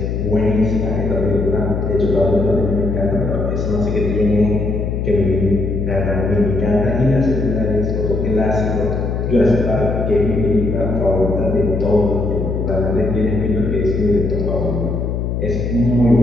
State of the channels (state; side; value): noise; left; hum, 2 dB below the sound